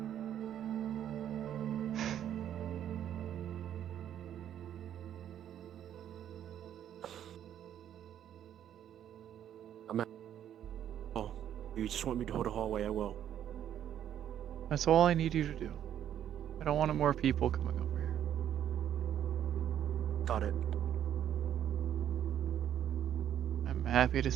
If you just want me to hold the hallway, I will. That's all I need you to do. I don't want more people coming over here. Got it. I'm happy to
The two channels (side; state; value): left; quieter; 10.3 dB